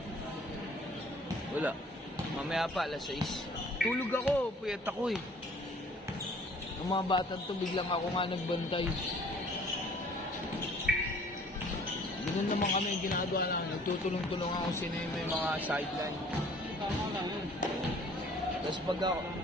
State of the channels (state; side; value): normal; both; correlation 0.54